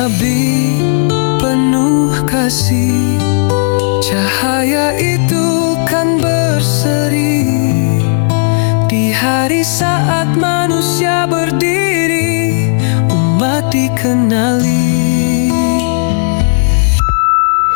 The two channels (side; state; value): right; silent; digital silence